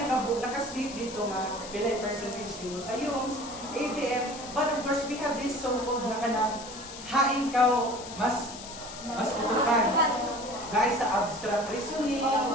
dito nga pilay percentage din mo sa UMS, ABM, but of course we have this so-called na kanang hain ka mas putukan. Dahil sa abstract reasoning,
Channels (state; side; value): noise; left; hiss, 13 dB below the sound